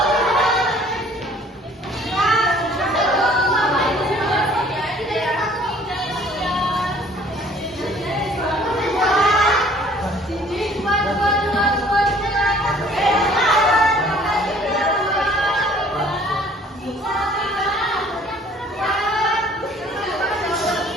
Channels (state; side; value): normal; both; correlation 0.55